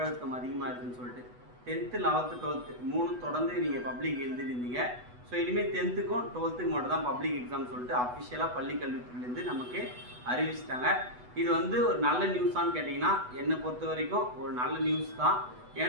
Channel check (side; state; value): left; late; 8.1 ms